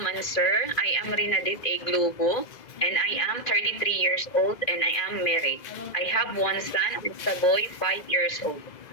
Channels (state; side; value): late; right; 2.0 ms